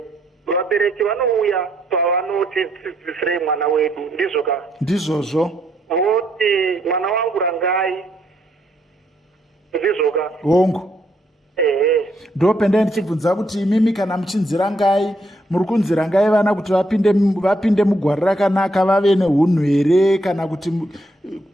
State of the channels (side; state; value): both; normal; correlation 0.74